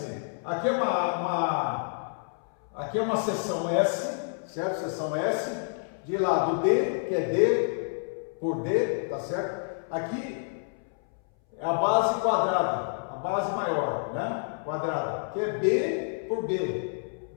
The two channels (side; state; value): right; silent; 59 dB below the other